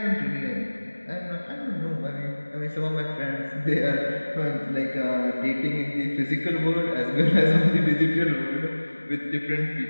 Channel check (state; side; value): inverted; both; correlation -1.00